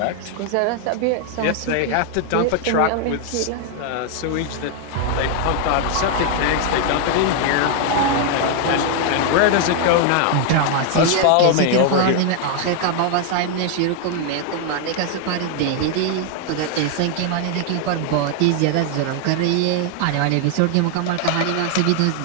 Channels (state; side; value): different; both; correlation 0.00